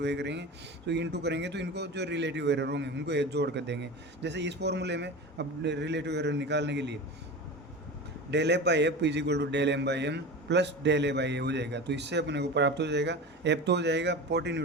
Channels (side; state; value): both; normal; correlation 0.30